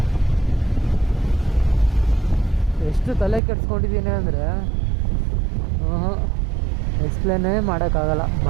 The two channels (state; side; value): drops out; left; at 3.4 s